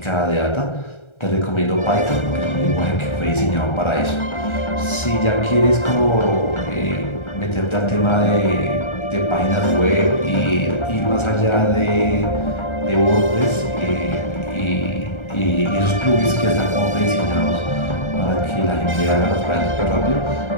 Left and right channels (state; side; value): late; right; 1.3 ms